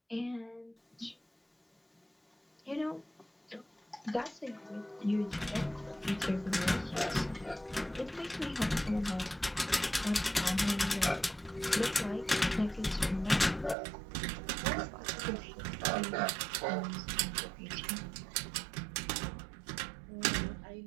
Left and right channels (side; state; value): left; drops out; at 13.8 s